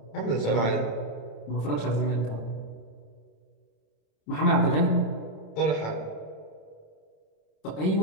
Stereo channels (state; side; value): late; right; 27 ms